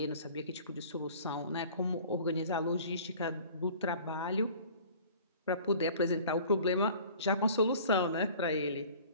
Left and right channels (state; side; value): inverted; both; correlation -0.47